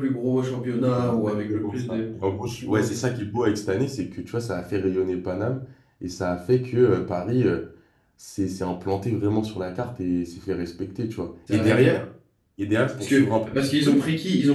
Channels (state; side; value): identical; both; correlation 1.00